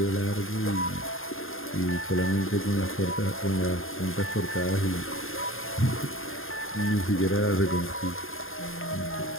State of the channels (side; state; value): right; late; 0.60 ms